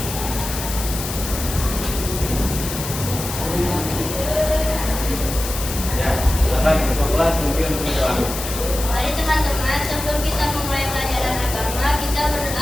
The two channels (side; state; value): left; noise; hiss, 7 dB below the sound